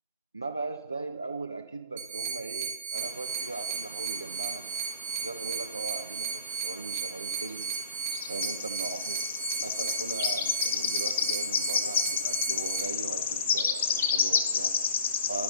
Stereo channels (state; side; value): inverted; both; correlation -0.47